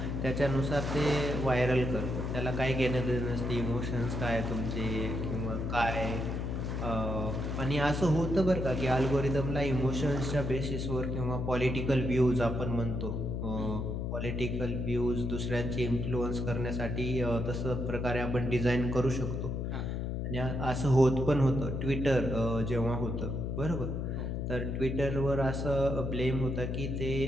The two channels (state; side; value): noise; left; hum, 2 dB below the sound